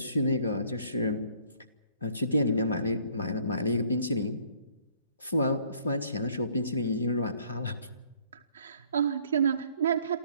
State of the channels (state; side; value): inverted; both; correlation -0.60